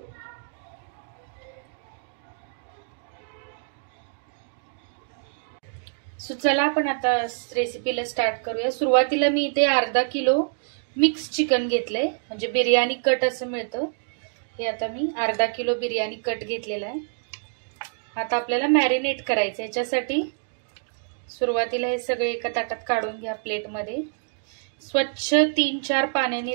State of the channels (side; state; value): left; silent; digital silence